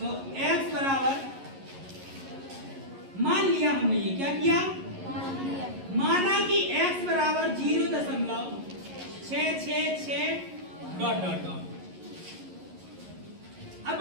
x बराबर मान लिया हमने ये क्या किया माना कि x बराबर 0.666 डॉट डॉट डॉट अब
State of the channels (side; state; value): left; late; 11 ms